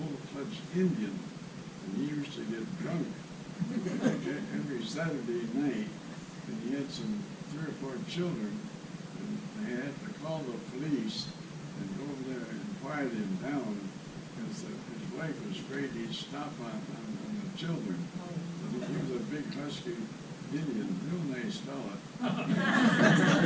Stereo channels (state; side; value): identical; both; correlation 1.00